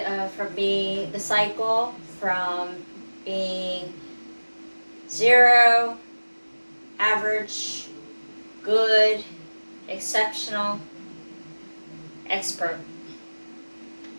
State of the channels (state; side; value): inverted; both; correlation -1.00